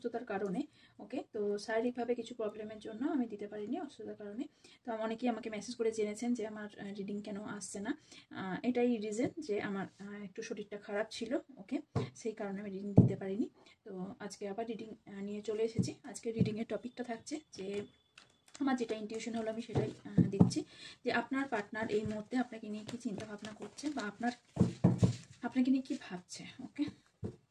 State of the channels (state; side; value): identical; both; correlation 1.00